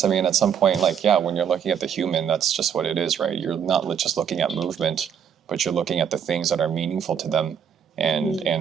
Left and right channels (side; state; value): left; quieter; 8.0 dB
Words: at some point, when you're looking at the human, that's just what it is, right? You're not just looking at movement, but you're looking at the things that are meaningful to them.